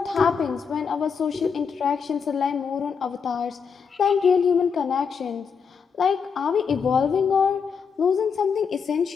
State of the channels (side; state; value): right; quieter; 6.2 dB